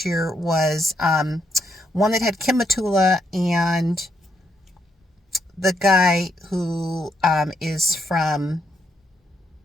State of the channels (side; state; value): both; normal; correlation 0.77